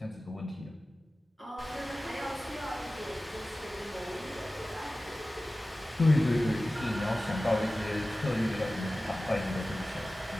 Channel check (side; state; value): both; normal; correlation 0.96